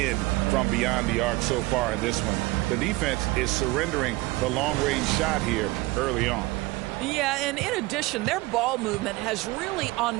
from beyond the arc so far in this one. The defense is surrendering the long-range shot here early on. Yeah, and in addition, their ball movement has really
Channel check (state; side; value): quieter; left; 21.0 dB